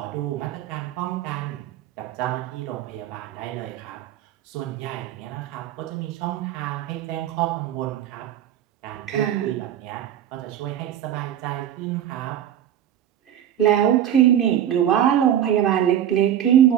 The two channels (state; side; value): quieter; left; 10.6 dB